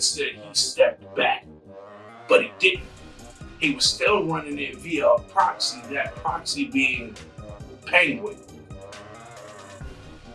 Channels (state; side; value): identical; both; correlation 1.00